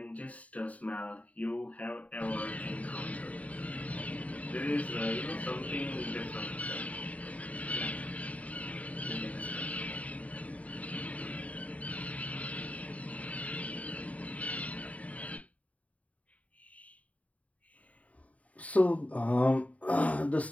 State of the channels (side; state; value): right; late; 0.069 ms